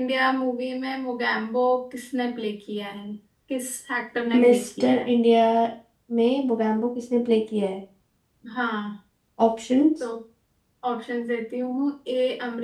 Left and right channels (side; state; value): both; identical; correlation 1.00